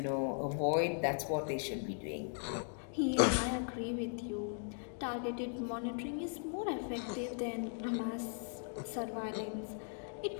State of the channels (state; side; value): silent; right; 52 dB below the other